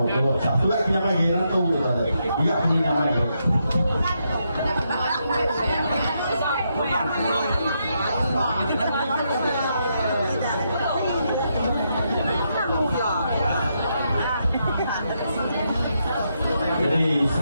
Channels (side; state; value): both; inverted; correlation -0.80